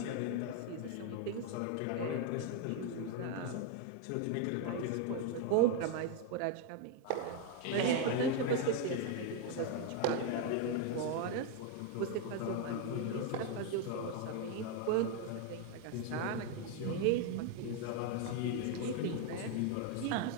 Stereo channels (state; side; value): different; both; correlation 0.01